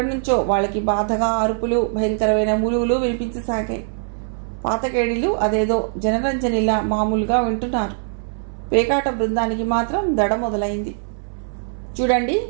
నుంచో వాళ్ళకి బాధగా అరుపులు, భయంకరమైన మూలుగులు వినిపించసాగాయి. పాతకేడీలు అదేదో జనరంజనిలా మామూలుగా వింటున్నారు. పేకాట బృందానికి మాత్రం దడ మొదలైంది. చూడండి,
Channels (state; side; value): silent; left; 63 dB below the other